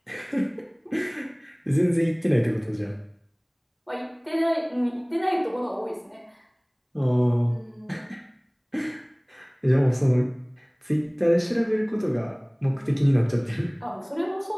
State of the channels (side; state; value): both; identical; correlation 1.00